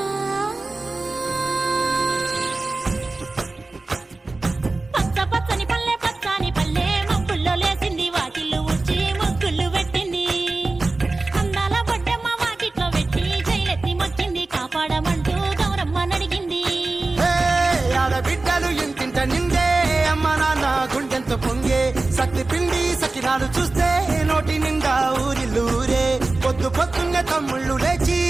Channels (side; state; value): left; quieter; 3.3 dB